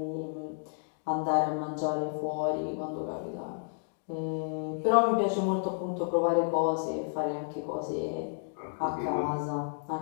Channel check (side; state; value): right; silent; digital silence